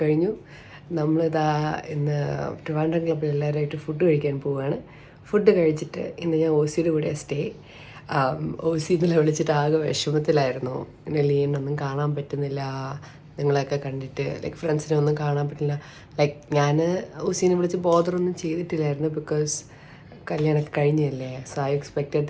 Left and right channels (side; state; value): both; identical; correlation 1.00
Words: കഴിഞ്ഞു. നമ്മളിതാ ഇന്ന് ട്രിവാൻഡ്രം ക്ലബ്ബിൽ എല്ലാവരുമായിട്ട് ഫുഡ് കഴിക്കാൻ പോവുകയാണ്. ഫുഡ് കഴിച്ചിട്ട് ഇന്ന് ഞാൻ ഓസിയുടെ കൂടെ സ്റ്റേ. ഓസി ഇന്നലെ വിളിച്ചിട്ട് ആകെ വിഷമത്തിലായിരുന്നു. ഇങ്ങനെ ലീനൊന്നും കാണാൻ പറ്റുന്നില്ല, നിങ്ങളെയൊക്കെ കണ്ടിട്ട് ലൈക്ക് ഫ്രണ്ട്സിനെ ഒന്നും കാണാൻ പറ്റില്ല. ലൈക്ക് ഞാൻ ഓസീനെ വിളിച്ച് ബോദറൊന്നും ചെയ്തിട്ടില്ലായിരുന്നു, ബിക്കോസ് കല്യാണമൊക്കെ കഴിഞ്ഞല്ലേ. So I expected